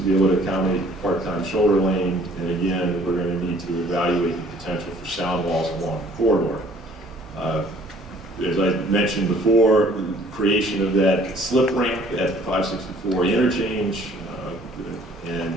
be able to accommodate the part-time shoulder lane. And again, we're going to need to evaluate the potential for sound walls along the corridor. As I mentioned before, the creation of that slip ramp at 564 interchange,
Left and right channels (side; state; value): both; normal; correlation 0.56